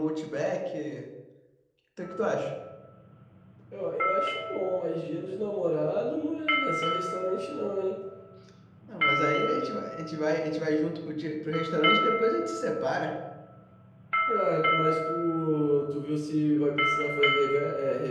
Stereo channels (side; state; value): both; identical; correlation 1.00